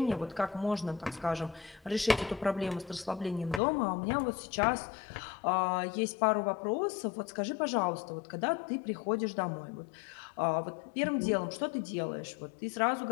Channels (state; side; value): drops out; right; at 3.6 s